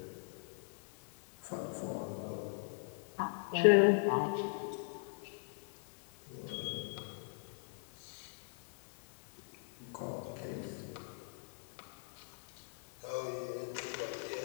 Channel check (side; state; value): right; silent; 51 dB below the other